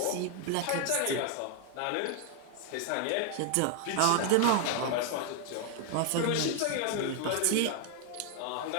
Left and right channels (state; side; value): different; both; correlation 0.00